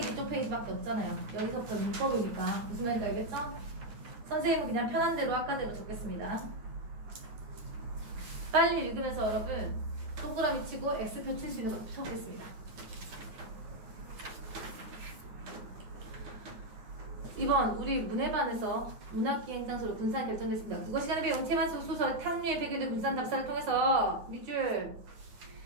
없잖아요. 여기서부터 문법이니까. 무슨 말인지 알겠죠? 선생님은 그냥 편한 대로 아까대로 적겠습니다. 빨리 읽으면서 여러분 동그라미 치고 X표 칠 수 있는 것도 쳐보겠습니다. 이번 우리 문해반에서 문학기행 장소로 군산이 결정됐습니다. 국어 시간에 배운 채만수 소설 탕류의 배경된 군산 답사를 통해서 밑줄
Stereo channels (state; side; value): late; left; 9.7 ms